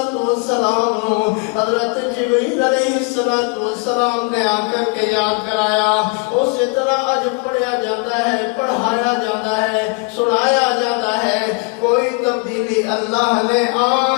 حضرت جبریل علیہ السلام نے آ کر کے یاد کرایا، اسی طرح اج پڑھیا جاتا ہے، پڑھایا جاتا ہے، سنایا جاتا ہے۔ کوئی تبدیلی اللہ نے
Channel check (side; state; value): right; quieter; 30.2 dB